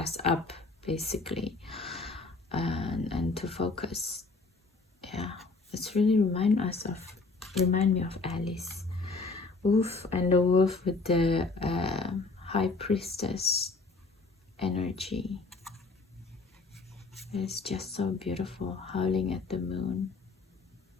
up, basically, and to focus. Yeah, it's really remind me of Alice. Wolf, and the wolf with the high priestess energy. It's just so beautiful, howling at the moon.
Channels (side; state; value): right; quieter; 3.7 dB